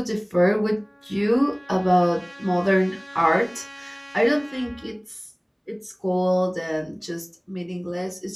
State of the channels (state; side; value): identical; both; correlation 1.00